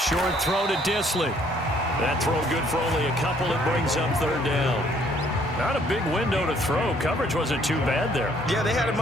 throw to Disley. That throw good for only a couple. It brings up 3rd down. Not a big window to throw. Coverage wasn't too bad there. Yeah, they had him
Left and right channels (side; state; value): both; normal; correlation 0.63